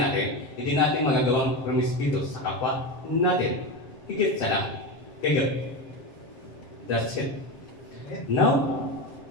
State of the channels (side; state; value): right; late; 7.4 ms